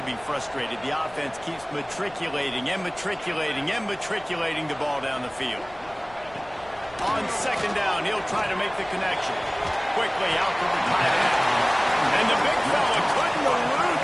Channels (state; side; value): noise; left; rumble, 24 dB below the sound